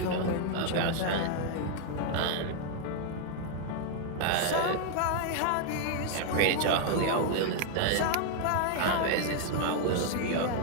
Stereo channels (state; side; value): different; both; correlation 0.00